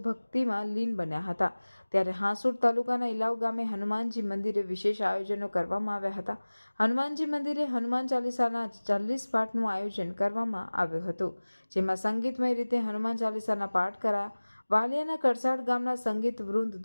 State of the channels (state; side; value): inverted; both; correlation -1.00